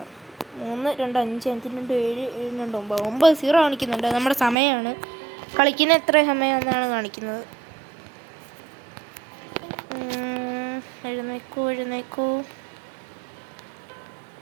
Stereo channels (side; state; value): left; drops out; at 4.5 s